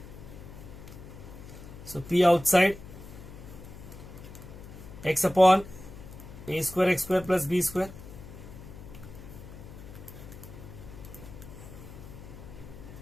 So P outside X upon A square X square plus B square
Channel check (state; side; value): noise; left; hum, 14 dB below the sound